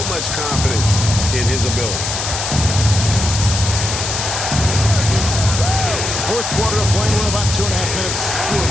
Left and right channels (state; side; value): noise; left; hiss, 3 dB below the sound